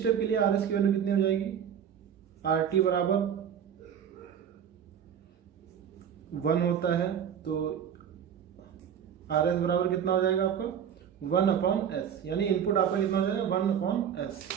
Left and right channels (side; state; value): left; quieter; 8.5 dB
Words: के लिए आर एस की वैल्यू कितनी हो जाएगी, आर टी बराबर 1 होता है, तो आर एस बराबर कितना हो जाएगा आपका 1/s, यानी इनपुट आपका कितना हो जाएगा 1/s।